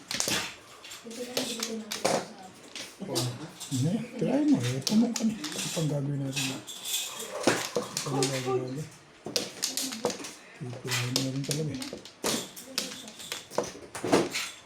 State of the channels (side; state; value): both; identical; correlation 1.00